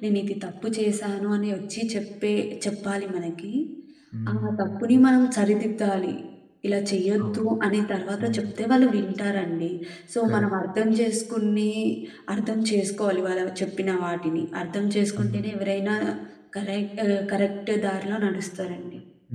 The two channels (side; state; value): both; identical; correlation 1.00